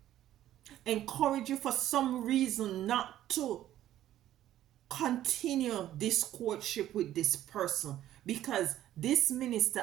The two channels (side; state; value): left; quieter; 12.7 dB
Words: Encourage you for some reason not to continue this courtship with this person. Because this